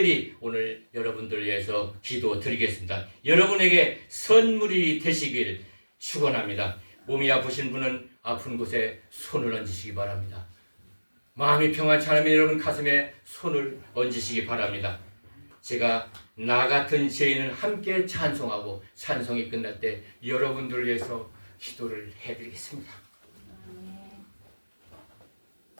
오늘 여러분들을 위해서 기도 드리겠습니다. 여러분에게 선물이 되시길 축원합니다. 몸이 아프신 분은 아픈 곳에 손을 얹으시기 바랍니다. 마음이 평안치 않으면 여러분 가슴에 손을 얹으시기 바랍니다. 제가 나 같은 죄인은 함께 찬송하고 찬송이 끝날 때 여러분들을 위해서 기도를 해드리겠습니다.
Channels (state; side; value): inverted; both; correlation -1.00